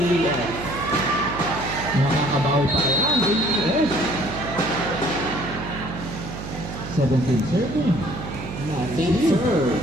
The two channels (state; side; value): noise; right; hum, 9 dB below the sound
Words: Nakakabawi pa yan. AES. 17 serving. Team serve.